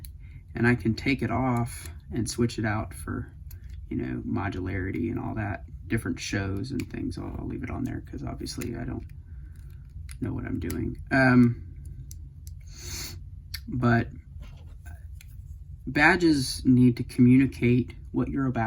and I can take it off and switch it out for, you know, modularity and all that, different shows and things. I'll leave it on there because obviously I don't know what I'm doing. But badges need to communicate what you're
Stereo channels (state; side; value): identical; both; correlation 1.00